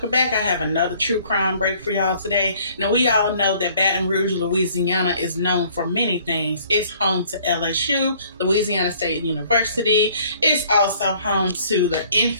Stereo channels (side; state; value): both; inverted; correlation -0.57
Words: back. I have another true crime break for y'all today. Now we all know that Baton Rouge, Louisiana is known for many things. It's home to LSU, Louisiana State University. It's also home to the